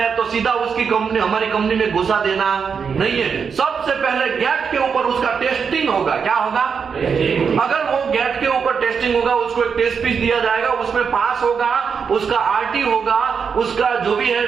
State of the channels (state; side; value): quieter; left; 6.2 dB